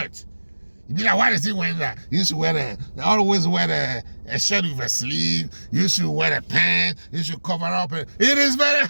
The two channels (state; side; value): inverted; both; correlation -1.00